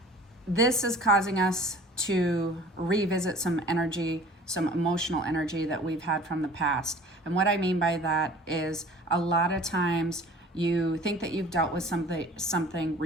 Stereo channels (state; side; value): normal; both; correlation 0.46